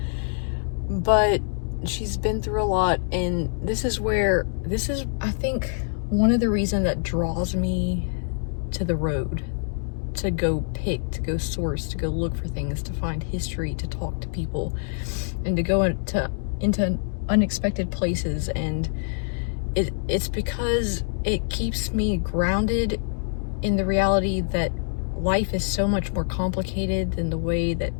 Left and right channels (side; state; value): right; silent; digital silence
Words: But she's been through a lot, and this is I think one of the reasons that draws me to the road, to go pick, to go source, to go look for things, to find history, to talk to people, and to go into unexpected places. And it's because it keeps me grounded in the reality that life is so much more complicated than the way that